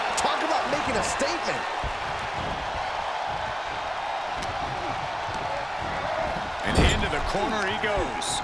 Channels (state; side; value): identical; both; correlation 1.00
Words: Talk about making a statement. And into the corner he goes.